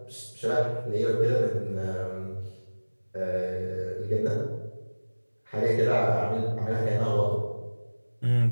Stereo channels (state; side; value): inverted; both; correlation -1.00